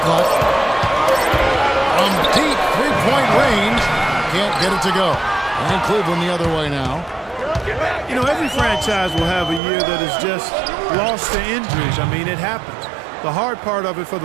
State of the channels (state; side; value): drops out; left; at 9.6 s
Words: clock. From deep three-point range, can't get it to go. And Cleveland the other way now. You know, every franchise will have a year that is just lost to injuries. I mean, it happens. The hard part of it for